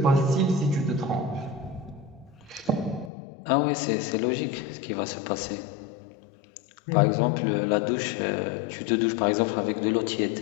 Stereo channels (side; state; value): right; drops out; at 3.1 s